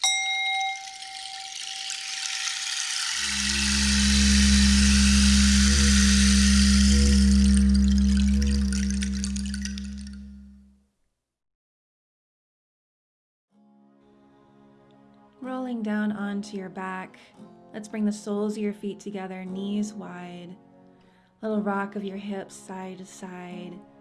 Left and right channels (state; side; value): identical; both; correlation 1.00